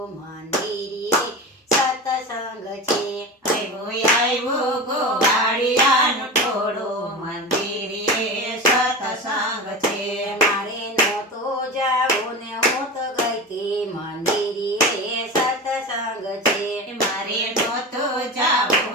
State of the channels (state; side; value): normal; both; correlation 0.28